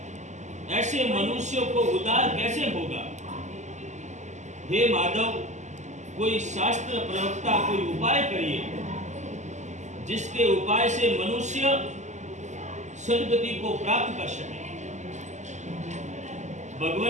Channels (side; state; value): left; late; 0.34 ms